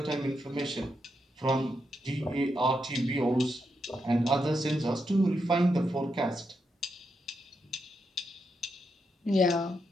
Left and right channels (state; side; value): normal; both; correlation 0.83